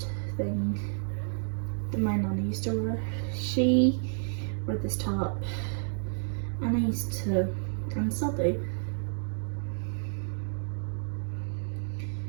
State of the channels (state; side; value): silent; left; digital silence